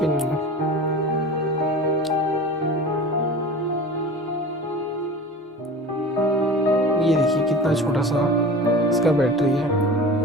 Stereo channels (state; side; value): normal; both; correlation 0.35